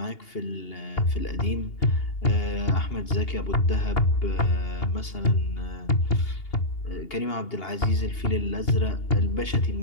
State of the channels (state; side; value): late; right; 2.8 ms